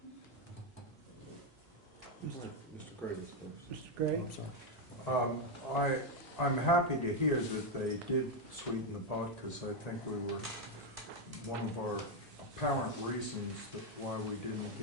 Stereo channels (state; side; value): normal; both; correlation 0.04